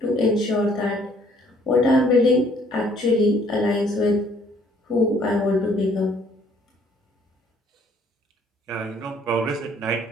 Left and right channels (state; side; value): normal; both; correlation 0.62